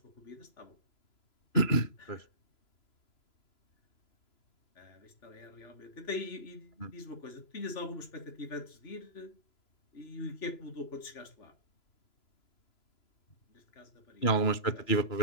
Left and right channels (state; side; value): late; right; 3.0 ms